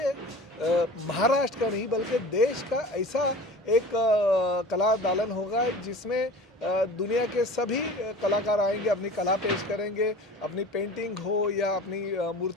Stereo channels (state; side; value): normal; both; correlation 0.39